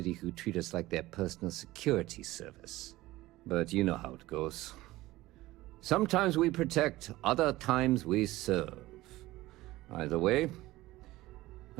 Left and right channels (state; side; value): quieter; left; 17.8 dB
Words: who treat us like their personal security service. But you know how it goes. Sometimes we protect, other times we serve. Either way,